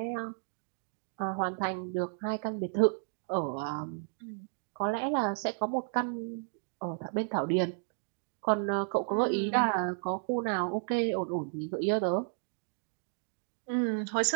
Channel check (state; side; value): silent; left; 56 dB below the other